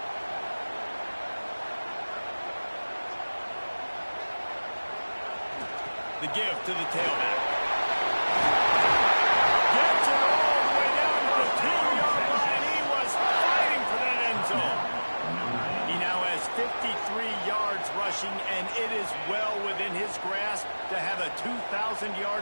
The give to the tailback. Gets it all the way down to the 2-yard line. He was fighting for that end zone. He now has 53 yards rushing, and it is well within his grasp to have a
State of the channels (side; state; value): both; inverted; correlation -1.00